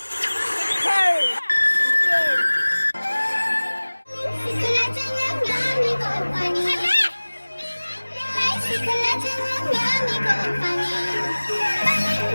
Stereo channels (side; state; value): both; inverted; correlation -1.00